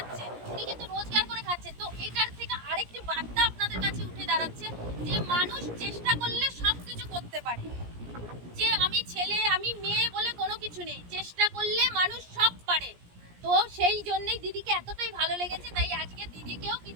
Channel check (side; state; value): left; late; 17 ms